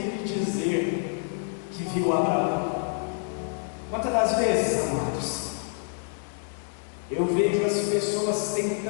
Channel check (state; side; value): silent; right; 60 dB below the other